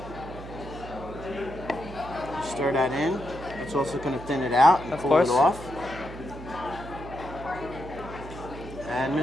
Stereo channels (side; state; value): right; noise; hum, 12 dB below the sound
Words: Stir that in. It's also going to thin it out and Of pull course. it off. And